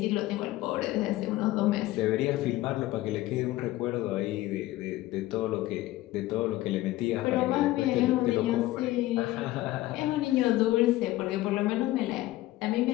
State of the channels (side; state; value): right; quieter; 16.7 dB